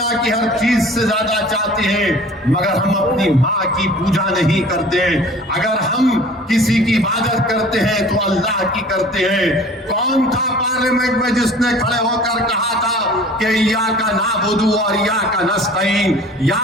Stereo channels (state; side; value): normal; both; correlation 0.46